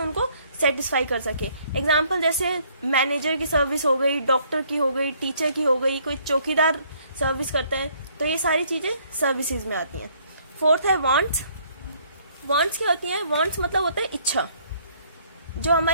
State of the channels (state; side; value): inverted; both; correlation -0.64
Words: उनको सेटिस्फाई कर सके। एग्जाम्पल जैसे मैनेजर की सर्विस हो गई, डॉक्टर की हो गई, टीचर की हो गई, कोई चौकीदार सर्विस करता है, तो ये सारी चीजें सर्विसेज में आती हैं। फोर्थ है वांट्स। वांट्स क्या होती हैं? वांट्स मतलब होता है इच्छा, जो